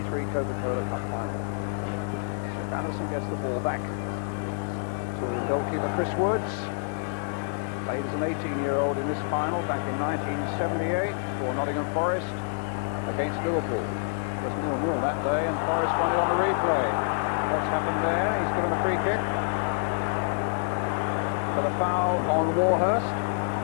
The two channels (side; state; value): right; silent; digital silence